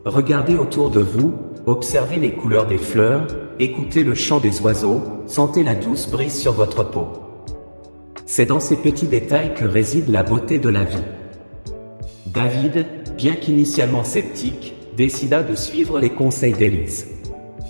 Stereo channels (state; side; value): inverted; both; correlation -1.00